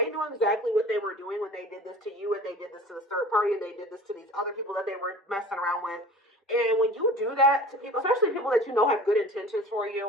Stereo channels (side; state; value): both; normal; correlation 0.42